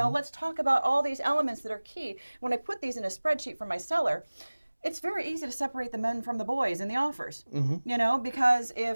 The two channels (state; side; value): inverted; both; correlation -1.00